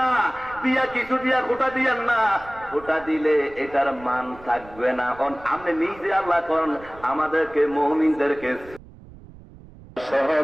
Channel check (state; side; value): noise; right; rumble, 20 dB below the sound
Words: দিয়া কিছু দিয়া খোটা দিয়েন না। খোটা দিলে এটার মান থাকবে না। আপনি নিজে আল্লাহ করেন আমাদেরকে মুমিনদেরকে